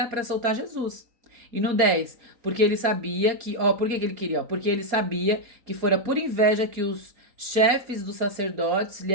para soltar Jesus. E no 10, porque ele sabia que, por que ele queria? Porque ele sabia que fora por inveja que os chefes dos sacerdotes lhe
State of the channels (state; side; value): late; left; 4.3 ms